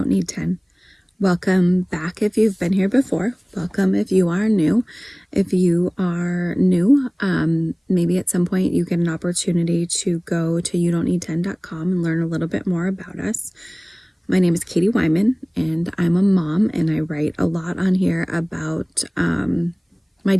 Need 10. Welcome back if you've been here before. Welcome if you are new. If you are new, maybe at some point you get an opportunity to go to youdon'tneed10.com and learn a little bit more about us. My name is Katie Wyman, and I'm a mom, and I write a lot on here about my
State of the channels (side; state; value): both; identical; correlation 1.00